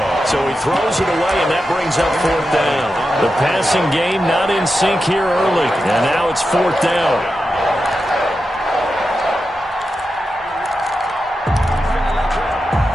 So he throws it away, and that brings up 4th down. The passing game not in sync here early. And now it's 4th down.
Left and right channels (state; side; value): normal; both; correlation 0.90